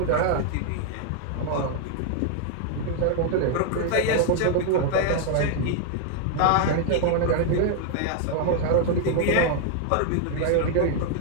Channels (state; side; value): different; both; correlation 0.00